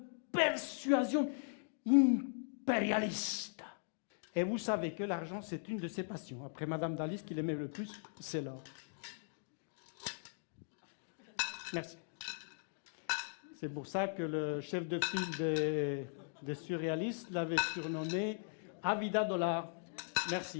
persuasion impérialiste. Et vous savez que l'argent, c'est une de ses passions. Après Madame Dali, ce qu'il aimait le plus, c'est l'or. Merci. C'est pour ça que le chef de file des surréalistes l'avait surnommé Avida Dollar.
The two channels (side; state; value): right; silent; digital silence